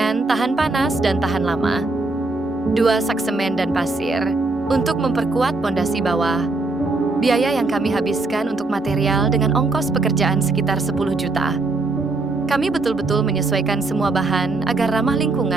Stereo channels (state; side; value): quieter; left; 3.3 dB